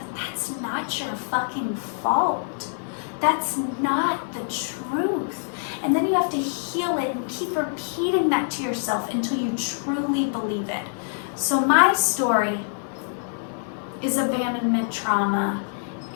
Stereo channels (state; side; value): silent; right; 62 dB below the other